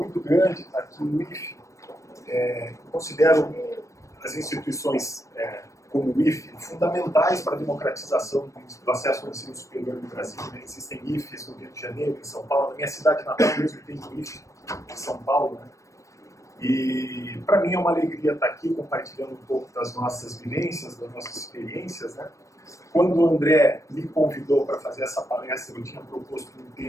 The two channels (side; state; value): right; late; 0.15 ms